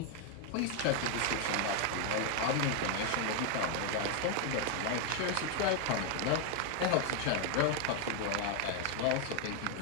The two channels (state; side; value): different; both; correlation 0.01